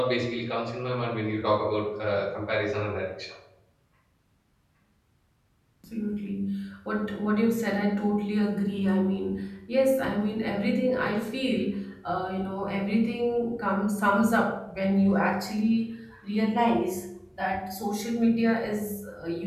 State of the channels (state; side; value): identical; both; correlation 1.00